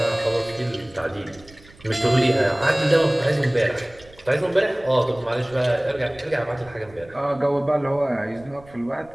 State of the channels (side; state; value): right; noise; rumble, 25 dB below the sound